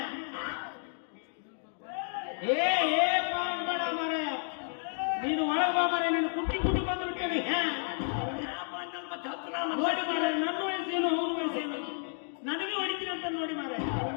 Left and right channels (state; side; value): silent; right; 57 dB below the other